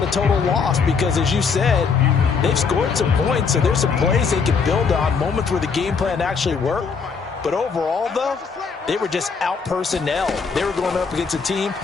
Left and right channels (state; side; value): quieter; right; 5.4 dB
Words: a total loss because, as you said, they've scored some points, so there's some plays they can build on, moments where the game plan actually worked. But overall, though, they were just out-personnel. They were going up against a team